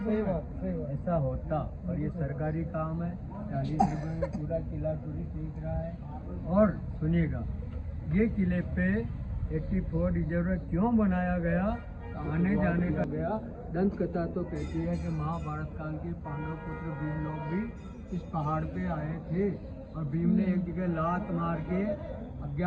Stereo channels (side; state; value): both; identical; correlation 1.00